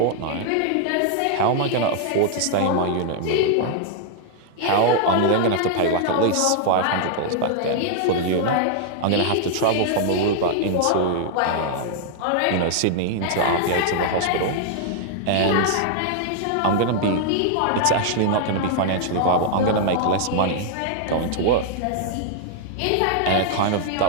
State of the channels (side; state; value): both; different; correlation -0.01